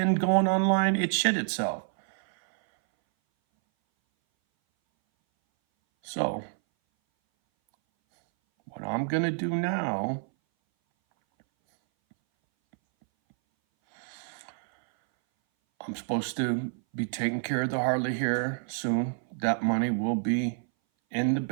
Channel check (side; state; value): left; silent; 58 dB below the other